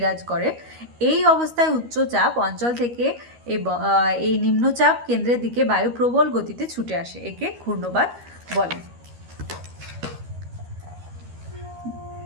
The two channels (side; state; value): left; late; 13 ms